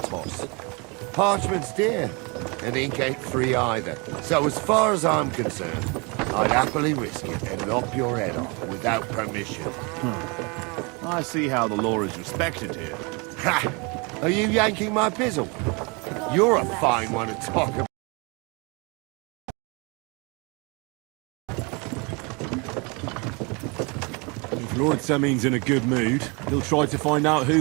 to us. Parchment's dear, and ink ain't free either. So as far as I'm concerned, I'd happily risk it and lop your head off without permission. I see how the law is respected here. Ha! Are you yanking my pizzle? You're a fine one to talk about. If Lord Sameen's in a good mood, he'll try to find out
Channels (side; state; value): left; quieter; 30.1 dB